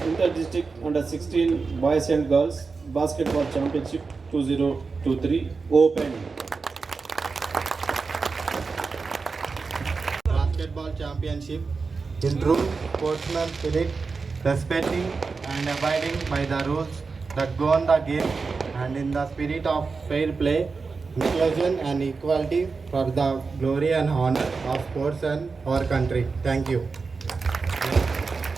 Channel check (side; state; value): left; quieter; 4.6 dB